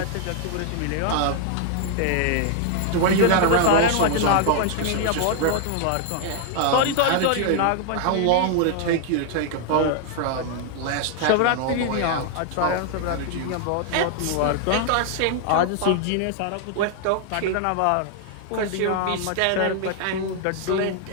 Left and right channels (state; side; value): different; both; correlation 0.00